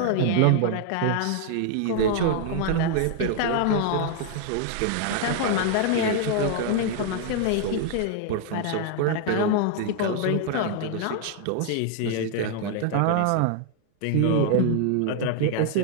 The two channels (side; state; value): both; different; correlation 0.00